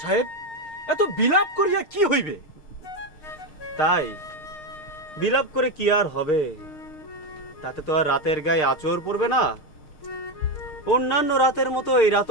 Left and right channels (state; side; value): late; right; 6.6 ms